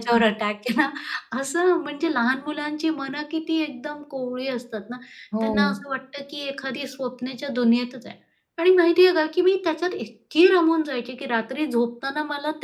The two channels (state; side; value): identical; both; correlation 1.00